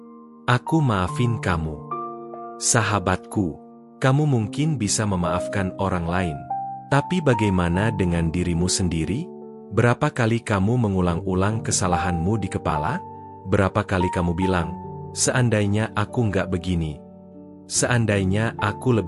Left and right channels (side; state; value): both; identical; correlation 1.00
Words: Aku maafin kamu." Sahabatku, kamu mungkin bisa memaafkan orang lain. Tapi bagaimana dengan dirimu sendiri? Berapa kali kamu mengulang-ulang kesalahanmu di kepala? Berapa kali kamu bilang, "Seandainya aku nggak begini. Seandainya aku